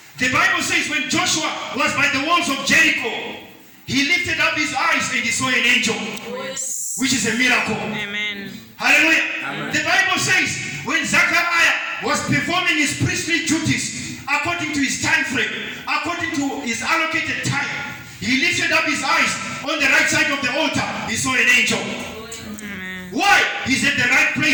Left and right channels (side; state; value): both; identical; correlation 1.00